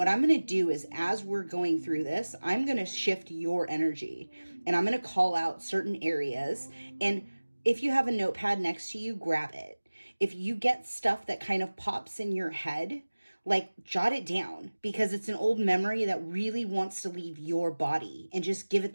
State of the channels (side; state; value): both; inverted; correlation -1.00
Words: I'm going to do is, as we're going through this, I'm going to shift your energy and I'm going to call out certain areas. And If you have a notepad next to you, grab it. If you get stuff that kind of pops in your head, like jot it down, because it's an old memory that really wants to leave your body, and just give it